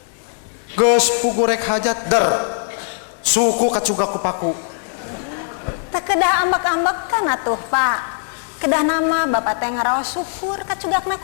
Geus pugu rek hajat der. Suku kacuga ku paku. Teu kedah ambek-ambekan atuh, Pak. Kedah nama bapak teh ngaraos syukur kacugakna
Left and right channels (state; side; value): silent; right; 66 dB below the other